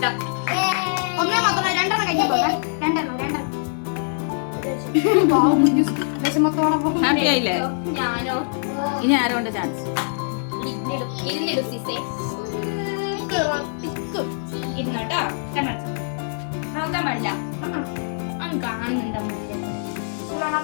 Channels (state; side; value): silent; right; digital silence